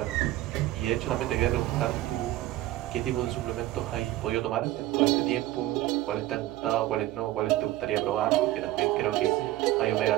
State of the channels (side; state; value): left; quieter; 15.7 dB